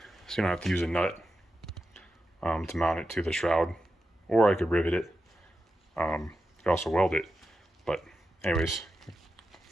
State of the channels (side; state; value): both; normal; correlation 0.89